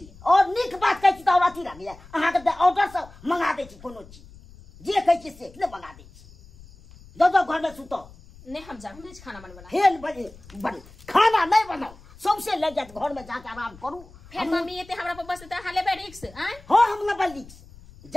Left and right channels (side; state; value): left; noise; rumble, 22 dB below the sound